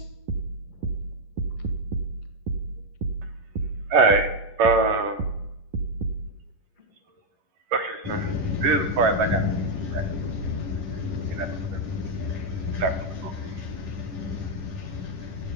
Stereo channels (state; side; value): late; left; 11 ms